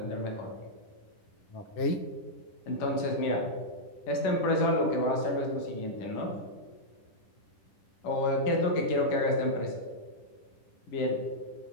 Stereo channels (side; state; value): right; late; 10 ms